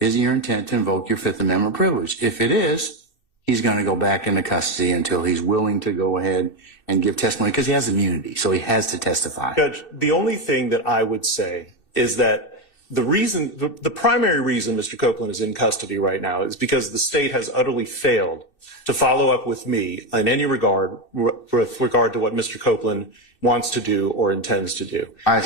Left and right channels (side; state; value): right; late; 2.6 ms